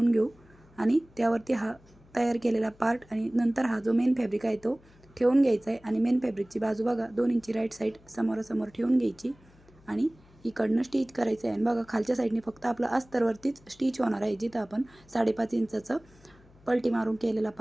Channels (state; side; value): noise; left; hum, 27 dB below the sound